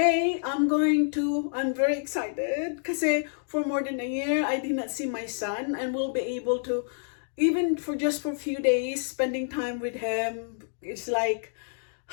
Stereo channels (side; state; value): right; silent; digital silence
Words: I'm very excited kasi for more than a year, I did not see my son and will be able to, even for just for a few days, spending time with him. It's like,